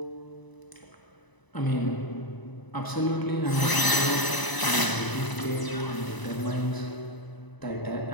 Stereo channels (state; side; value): late; right; 1.0 ms